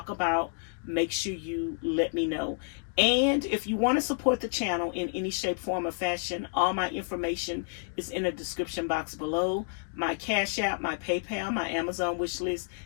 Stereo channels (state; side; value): silent; right; 58 dB below the other